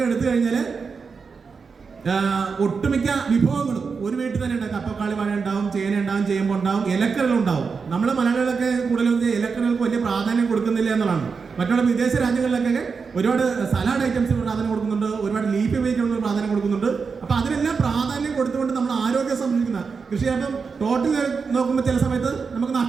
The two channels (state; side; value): quieter; left; 5.2 dB